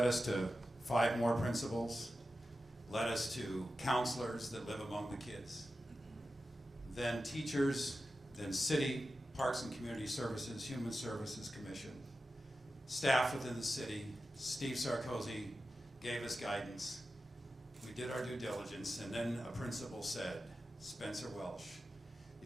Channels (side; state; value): both; normal; correlation 0.92